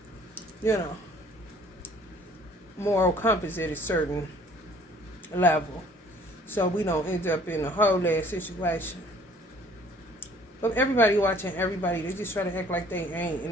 you know, moral compass at a certain level, so we don't end up in a whole ass situation. But everybody watching everybody, they just try to act like they ain't,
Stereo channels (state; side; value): normal; both; correlation 0.55